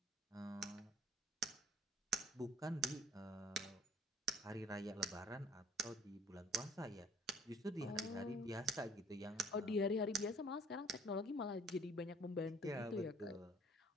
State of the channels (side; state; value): both; normal; correlation 0.56